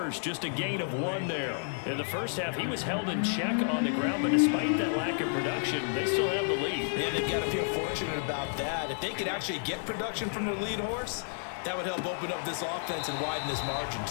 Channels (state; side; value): silent; right; digital silence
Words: just a gain of 1 there. In the first half, he was held in check on the ground, but despite that lack of production, they still have the lead. Yeah, they've got to feel fortunate about that. If they could actually get production from their lead horse, that would help open up this offense and widen this margin,